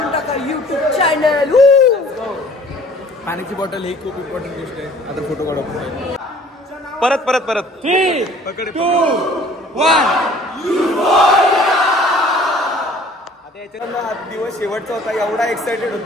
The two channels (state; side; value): normal; both; correlation 0.52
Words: टाका युट्यूब चॅनल. पाण्याची बॉटल ही खूप इम्पॉर्टंट गोष्ट आहे. आता फोटो काढू. परत 3, 2, 1. आता दिवस शेवटचा होता. एवढा एक्साइटेड